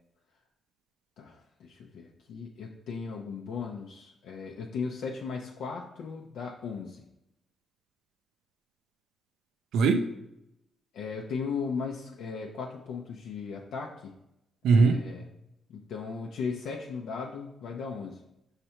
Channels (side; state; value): both; normal; correlation 0.73